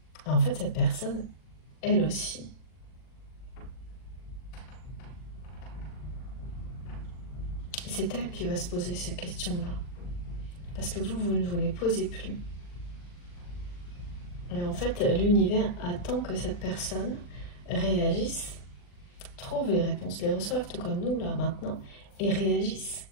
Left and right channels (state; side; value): late; right; 40 ms